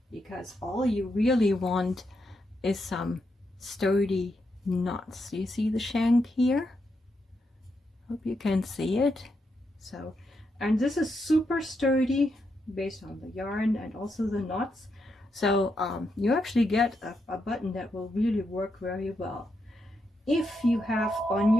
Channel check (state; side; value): normal; both; correlation 0.82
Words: because all you really want is some sturdy knots. You see the shank here? Hope you can see it. So, and this is super sturdy based on the yarn and also the knots. So you actually get a button that will really work very well. If you have on